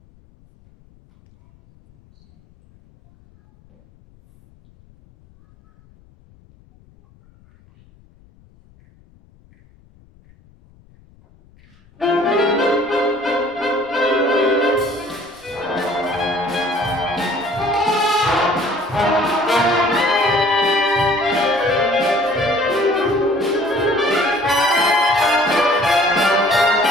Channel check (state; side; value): noise; left; rumble, 29 dB below the sound